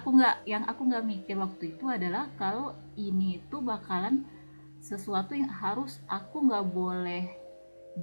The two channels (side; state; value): both; inverted; correlation -1.00